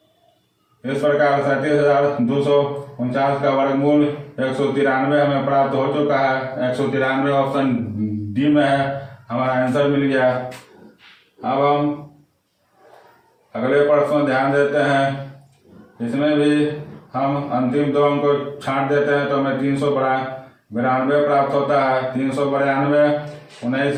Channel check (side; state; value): both; identical; correlation 1.00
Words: इस प्रकार 37,249 का वर्गमूल 193 हमें प्राप्त हो चुका है। 193 ऑप्शन डी में है, हमारा आंसर मिल गया। अब हम अगले प्रश्न ध्यान देते हैं। इसमें भी हम अंतिम 2 अंक को छांट देते हैं तो हमें 392 प्राप्त होता है। 392 19